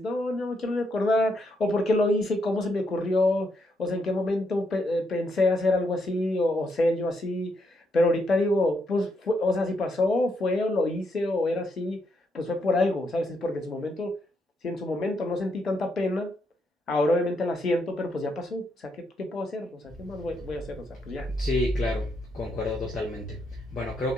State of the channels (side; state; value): both; normal; correlation 0.78